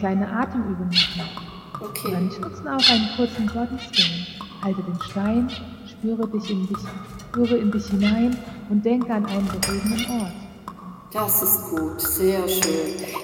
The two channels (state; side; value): identical; both; correlation 1.00